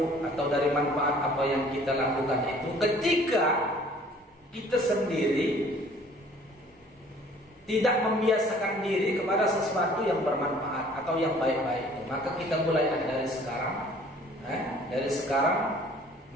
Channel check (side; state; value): both; normal; correlation 0.54